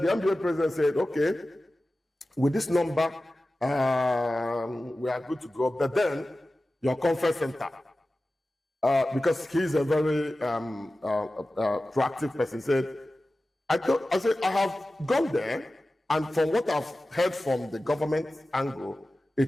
the MBA president said, okay, with this number, we are good to go. But then your conference center, because he's a very proactive person, said, I have gone there, and from what I've heard from the government angle,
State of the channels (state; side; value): normal; both; correlation 0.95